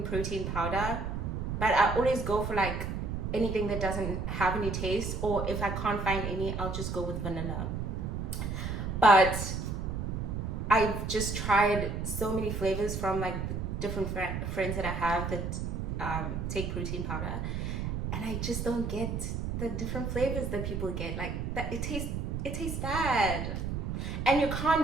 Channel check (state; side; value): noise; right; rumble, 3 dB below the sound